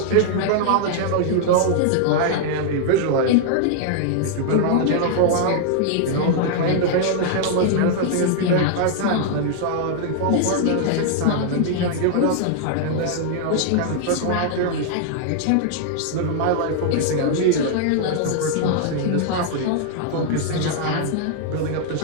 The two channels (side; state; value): both; different; correlation 0.00